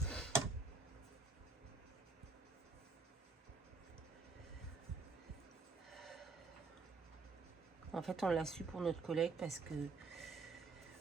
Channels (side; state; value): left; quieter; 4.1 dB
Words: En fait, on l'a su pour notre collègue parce que